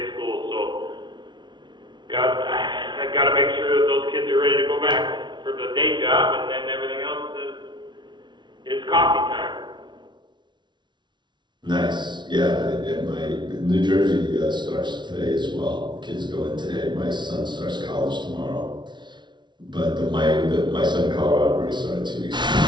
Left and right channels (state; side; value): late; left; 0.22 ms